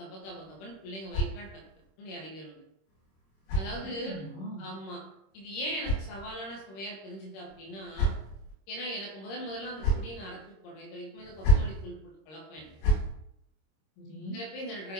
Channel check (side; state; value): right; late; 26 ms